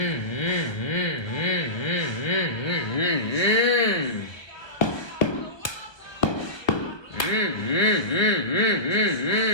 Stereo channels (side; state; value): right; late; 1.1 ms